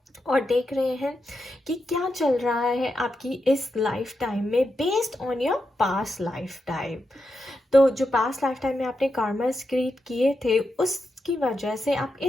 और देख रहे हैं कि क्या चल रहा है आपकी इस लाइफ टाइम में based on your past life time. तो जो पास्ट लाइफ टाइम में आपने कार्मास क्रिएट किए थे उसकी वजह से आप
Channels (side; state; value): both; normal; correlation 0.86